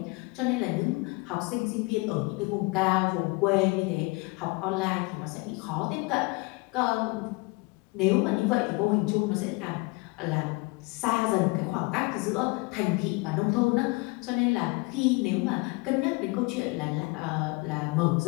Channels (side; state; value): right; quieter; 26.4 dB